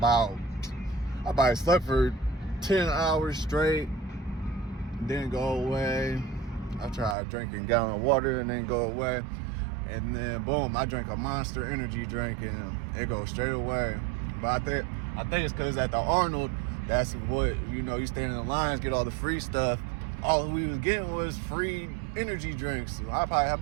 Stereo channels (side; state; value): left; drops out; at 7.2 s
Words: for 10 hours straight. Didn't go away. I tried drinking a gallon of water and didn't go away. And then boom, I drank a Monster energy drink and it goes straight away. But I think it's because at the Arnold, that's what, you stand in the lines, get all the free stuff. All we was getting was free energy drinks. So I probably have